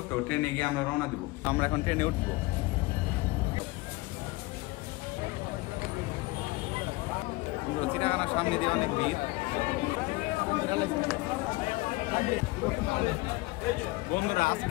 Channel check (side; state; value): right; quieter; 22.2 dB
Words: তো ট্রেনে গিয়ে আমরা রওনা দিব। আমরা এখন ট্রেনে উঠবো। চিড়িয়াখানার সামনে দিয়ে অনেক ভিড়। বন্ধুরা